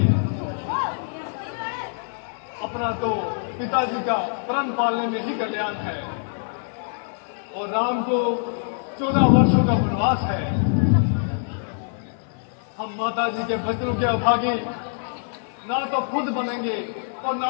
अपना तो पिताजी का प्रण पालने में ही कल्याण है और राम को 14 वर्षों का वनवास है। हम माताजी के वचनों के अभागे ना तो खुद बनेंगे और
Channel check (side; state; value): right; silent; 62 dB below the other